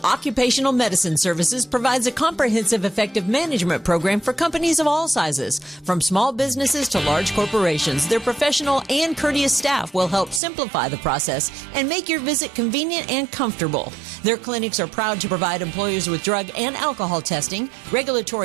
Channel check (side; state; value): left; drops out; at 10.4 s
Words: occupational medicine services provides a comprehensive effective management program for companies of all sizes. From small businesses to large corporations, their professional and courteous staff will help simplify the process and make your visit convenient and comfortable. Their clinics are proud to provide employers with drug and alcohol testing,